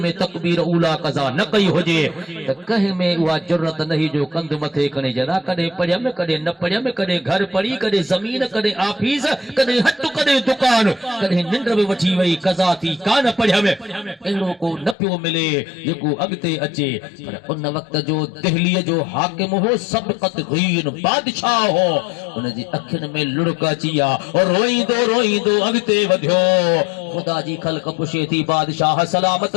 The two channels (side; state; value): right; drops out; at 15.0 s